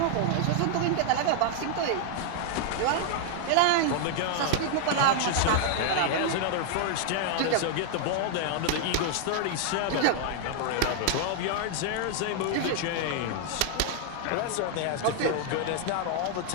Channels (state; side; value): different; both; correlation 0.00